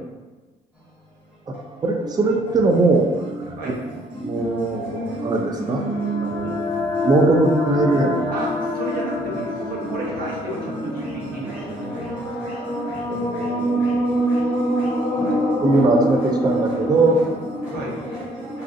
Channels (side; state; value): both; normal; correlation 0.64